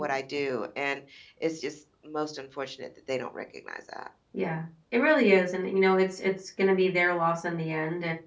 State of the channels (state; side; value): identical; both; correlation 1.00